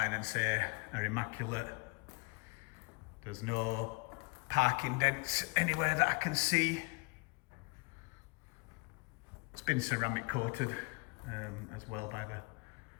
and say are immaculate. There's no parking dents anywhere that I can see. It's been ceramic coated as well by the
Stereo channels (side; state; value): right; quieter; 28.6 dB